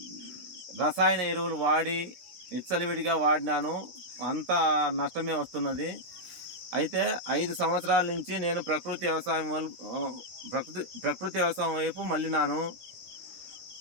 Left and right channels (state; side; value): late; left; 16 ms